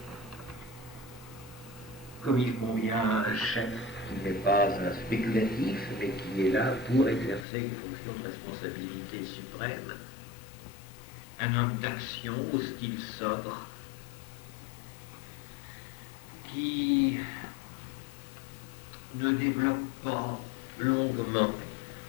comme il convient à un chef qui n'est pas un spéculatif, mais qui est là pour exercer une fonction de responsabilité suprême. Un homme d'action au style sobre, qui ne développe pas longuement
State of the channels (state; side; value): drops out; right; at 7.5 s